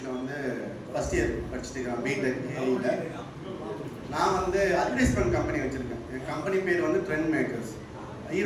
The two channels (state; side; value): identical; both; correlation 1.00